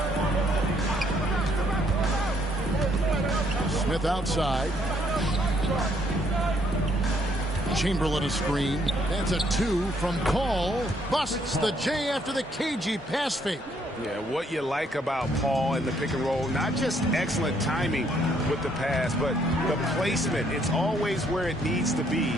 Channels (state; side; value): normal; both; correlation 0.69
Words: Smith outside. Chamberlain a screen. That's a 2 from Paul. Busts the J after the cagey pass fake. Yeah, what you like about Paul in the pick and roll, not just excellent timing with the pass, but the placement. It's always where it needs to be